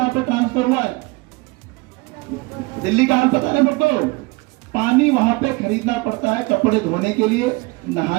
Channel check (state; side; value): quieter; left; 25.1 dB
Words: पे ट्रांसफर हुआ है, दिल्ली का हाल पता नहीं सबको। पानी वहां पे खरीदना पड़ता है, कपड़े धोने के लिए,